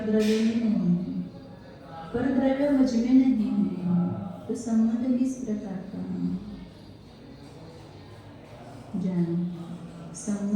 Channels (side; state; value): both; identical; correlation 1.00